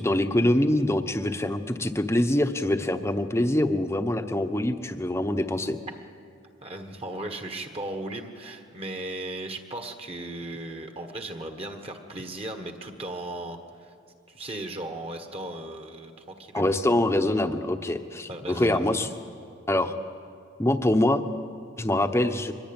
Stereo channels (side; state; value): both; normal; correlation 0.79